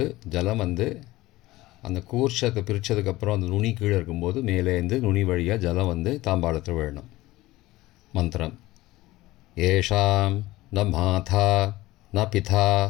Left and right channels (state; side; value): quieter; right; 18.2 dB